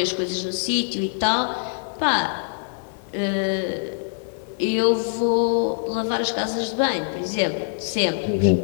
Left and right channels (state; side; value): silent; right; digital silence